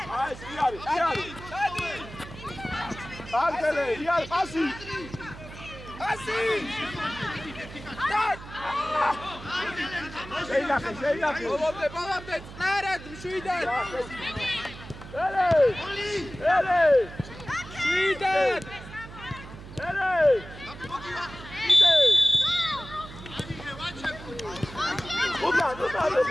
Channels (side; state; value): right; noise; hum, 14 dB below the sound